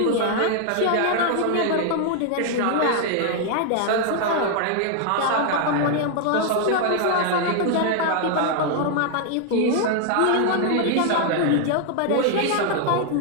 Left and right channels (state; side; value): different; both; correlation 0.00